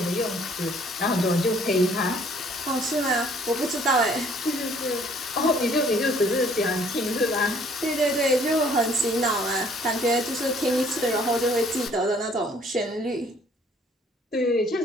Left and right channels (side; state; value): both; normal; correlation 0.59